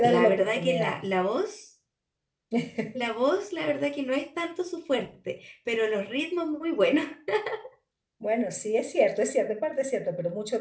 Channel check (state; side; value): identical; both; correlation 1.00